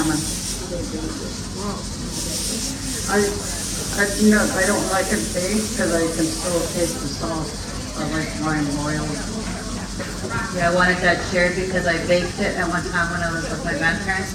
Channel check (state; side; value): identical; both; correlation 1.00